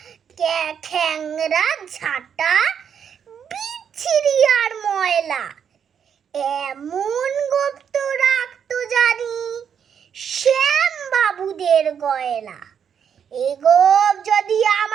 খ্যাংরা ঝাঁটা, বিচ্ছিরি আর ময়লা, এমন গোঁফ তো রাখতো জানি শ্যাম বাবুদের গয়লা। এ গোঁফ যদি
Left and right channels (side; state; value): left; quieter; 7.8 dB